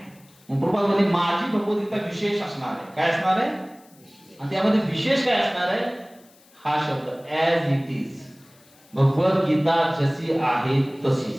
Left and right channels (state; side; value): noise; left; hiss, 29 dB below the sound